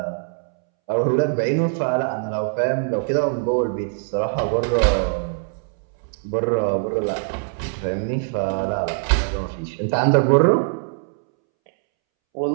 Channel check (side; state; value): left; silent; 64 dB below the other